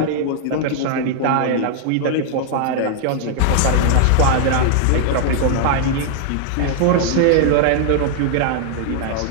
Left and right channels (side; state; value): both; different; correlation 0.00